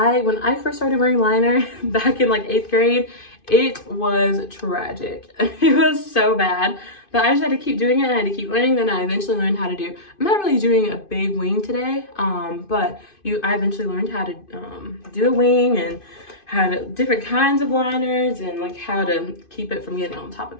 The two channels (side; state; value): right; late; 2.5 ms